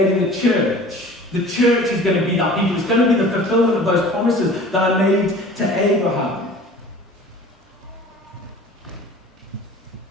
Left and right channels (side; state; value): both; normal; correlation 0.44